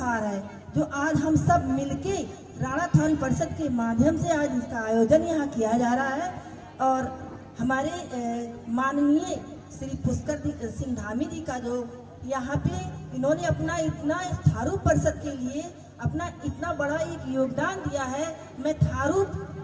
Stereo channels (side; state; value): both; identical; correlation 1.00